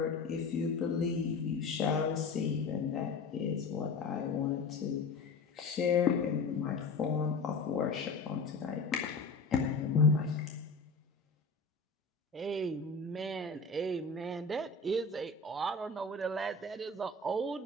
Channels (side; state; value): right; quieter; 3.9 dB